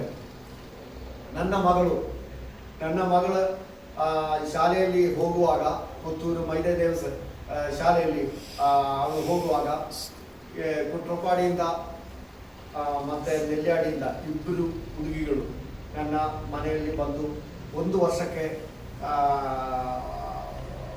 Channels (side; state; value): both; identical; correlation 1.00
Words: ನನ್ನ ಮಗಳ ಶಾಲೆಯಲ್ಲಿ ಹೋಗುವಾಗ, ಪುತ್ತೂರು ಮೈದೆ ದೇವಸ ಶಾಲೆಯಲ್ಲಿ ಅವಳು ಹೋಗುವಾಗ ಕುಟ್ರಪಾಡಿಯಿಂದ ಮತ್ತೆ ನೆಲ್ಯಾಡಿಯಿಂದ 2 ಹುಡುಗಿಗಳು ನನ್ನ ಮನೆಯಲ್ಲಿ ಬಂದು 1 ವರ್ಷಕ್ಕೆ